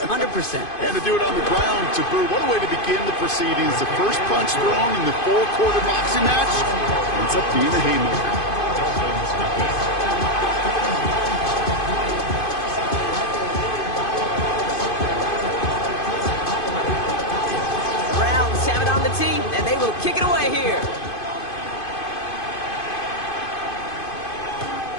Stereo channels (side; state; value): right; late; 2.5 ms